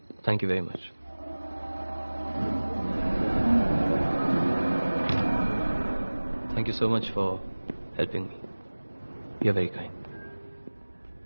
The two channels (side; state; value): both; inverted; correlation -1.00